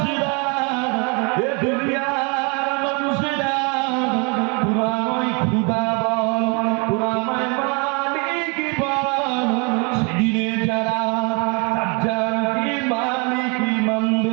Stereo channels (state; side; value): quieter; left; 32.9 dB